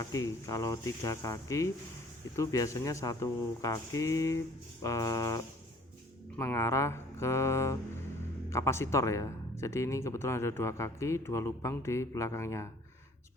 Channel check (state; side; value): normal; both; correlation 0.54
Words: Kalau 3 kaki itu biasanya 1 kaki mengarah ke kapasitor ya. Jadi ini kebetulan ada 2 kaki, 2 lubang di belakangnya.